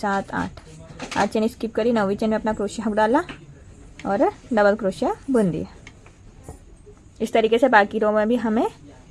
8 चेन स्किप करी। 9वीं चेन में अपना क्रोशिया हुक डाला और डबल क्रोशिया बुन दिया। इस तरीके से बाकी रो में भी हमें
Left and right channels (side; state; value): both; identical; correlation 1.00